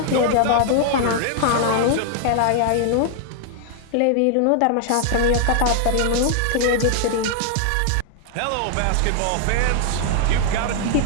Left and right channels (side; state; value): both; different; correlation 0.00